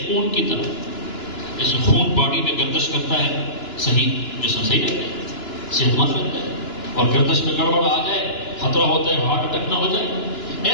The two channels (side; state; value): right; late; 2.9 ms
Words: خون کی طرح، جیسے خون باڈی میں گردش کرتا ہے، صحیح جسم صحیح رہتا ہے، صحت مند رہتا ہے، اور گردش میں گڑبڑ آ جائے خطرہ ہوتا ہے ہارٹ اٹیک نہ ہو جائے۔